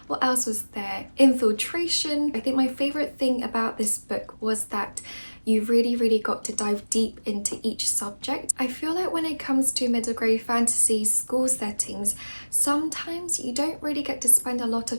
what else was there? Infiltration. I think my favourite thing about this book was that you really got to dive deep into each subject. I feel like when it comes to middle grade fantasy school settings, sometimes you don't really get to spend a lot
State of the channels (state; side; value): inverted; both; correlation -1.00